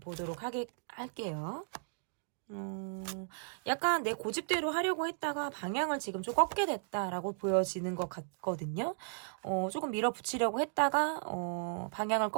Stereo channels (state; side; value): silent; left; digital silence